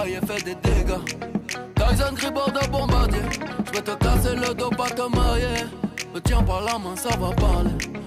fait des dégâts. Tyson Gribord de bombardier. J'vais te casser le dos, pas te mailler. Me tiens par la main, ça va parler.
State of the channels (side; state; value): both; identical; correlation 1.00